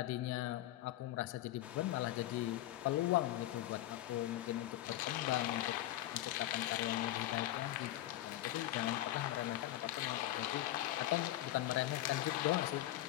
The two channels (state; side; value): quieter; right; 14.8 dB